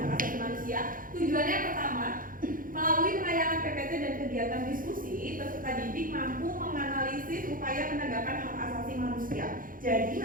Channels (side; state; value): left; late; 0.40 ms